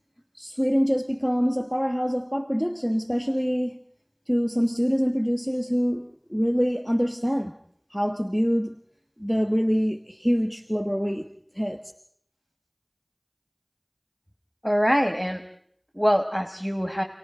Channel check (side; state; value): both; identical; correlation 1.00